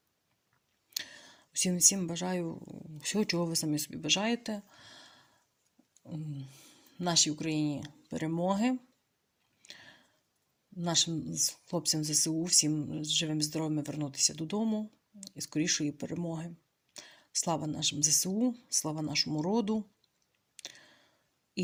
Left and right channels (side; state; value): both; identical; correlation 1.00